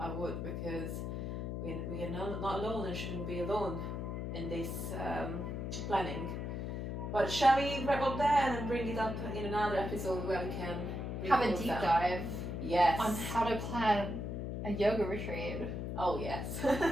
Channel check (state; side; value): noise; left; hum, 4 dB below the sound